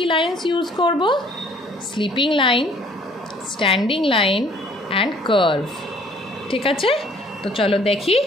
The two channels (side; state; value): both; normal; correlation 0.58